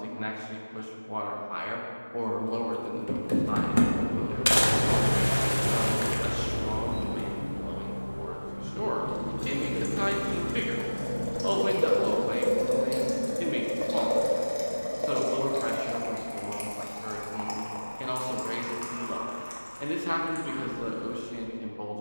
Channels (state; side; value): inverted; both; correlation -1.00